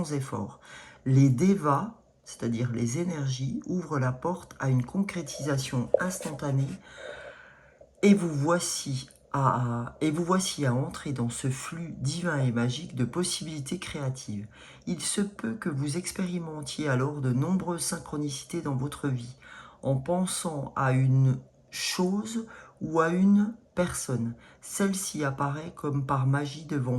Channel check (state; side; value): identical; both; correlation 1.00